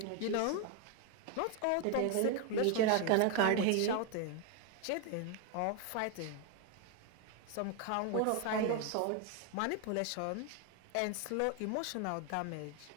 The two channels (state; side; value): different; both; correlation 0.01